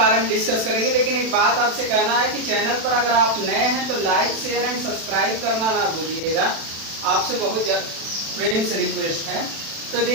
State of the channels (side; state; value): left; late; 36 ms